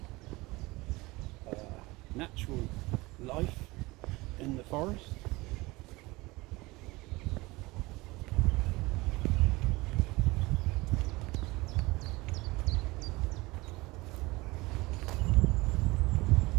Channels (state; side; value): quieter; left; 21.9 dB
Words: natural life in the forest.